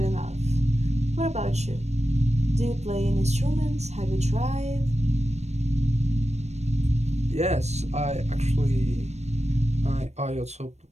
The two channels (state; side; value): late; left; 0.32 ms